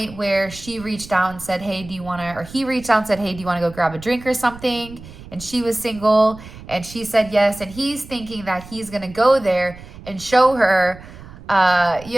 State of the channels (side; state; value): right; noise; rumble, 17 dB below the sound